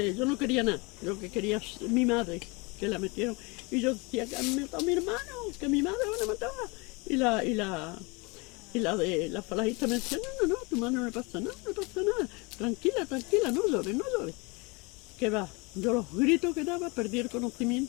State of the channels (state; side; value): quieter; right; 27.8 dB